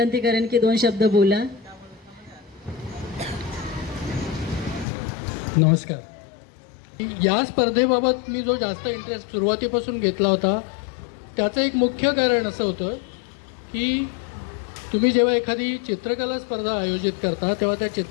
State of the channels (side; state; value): right; drops out; at 4.9 s